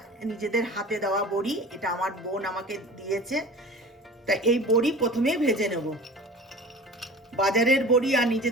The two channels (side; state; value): both; normal; correlation 0.37